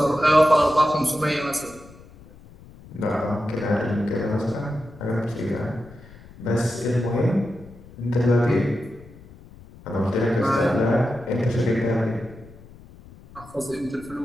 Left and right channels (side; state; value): left; noise; rumble, 21 dB below the sound